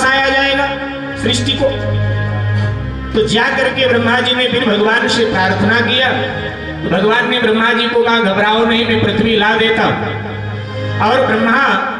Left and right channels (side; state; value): both; identical; correlation 1.00